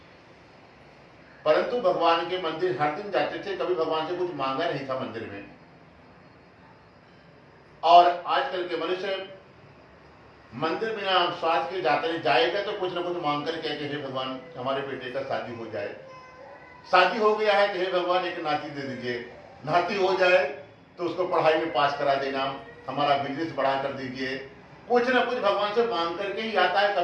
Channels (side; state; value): both; identical; correlation 1.00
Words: परंतु भगवान के मंदिर हर दिन जाते थे, कभी भगवान से कुछ मांगा नहीं था मंदिर में। और आजकल के मनुष्य मंदिर बिना स्वार्थ के जाते नहीं, जाएगा तो कुछ ना कुछ मांग कर कहते हे भगवान हमारे बेटे का शादी हो जाए, शादी हो गया है तो हे भगवान एक नाती दे दीजिए, नाती हो जाए तो उसको पढ़ाई में पास करा देना, हमारा बिजनेस बढ़ा कर दीजिए। कुछ ना कुछ भगवान से मांग करके ही आता है,